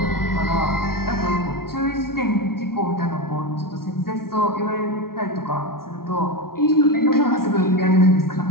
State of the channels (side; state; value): right; late; 0.93 ms